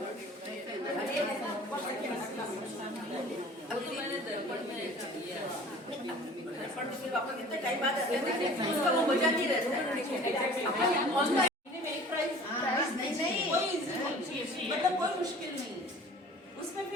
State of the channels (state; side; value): normal; both; correlation 0.46